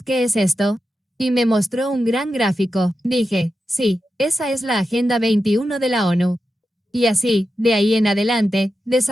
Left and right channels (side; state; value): both; normal; correlation 0.90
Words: qué es esto? Y me mostró un gran gráfico. Dije, sí, esa es la Agenda 21 de la ONU. Y así, de ahí en adelante,